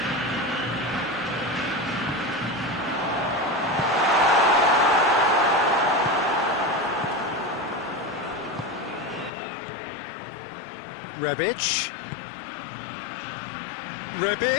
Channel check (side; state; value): right; drops out; at 9.3 s